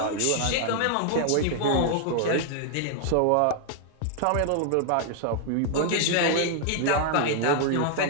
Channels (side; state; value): both; different; correlation 0.00